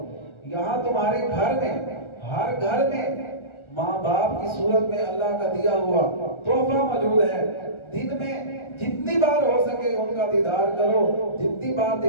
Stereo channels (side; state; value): right; late; 1.4 ms